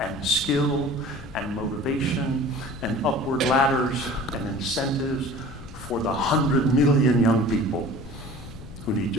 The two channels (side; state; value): left; noise; rumble, 15 dB below the sound